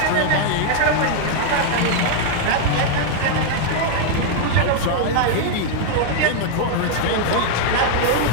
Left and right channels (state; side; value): different; both; correlation 0.00